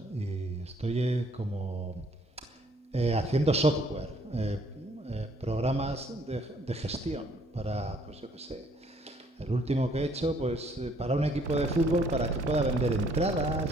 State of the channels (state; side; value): normal; both; correlation 0.64